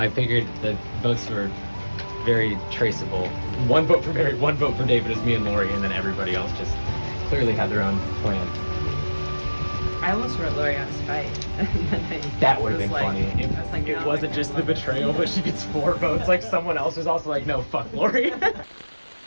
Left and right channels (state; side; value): inverted; both; correlation -1.00